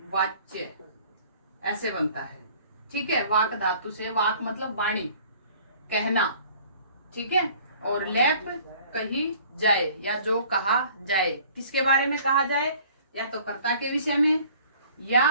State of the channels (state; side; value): inverted; both; correlation -0.52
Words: वाच्य ऐसे बनता है। ठीक है। वाक धातु से, वाक मतलब वाणी, कहना। ठीक है। और लैप कही जाए या जो कहा जाए। किसके बारे में कहा जाए? या तो कर्ता के विषय में, या